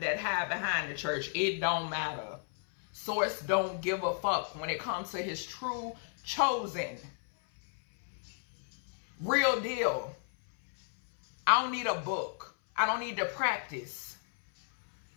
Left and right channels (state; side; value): silent; right; 56 dB below the other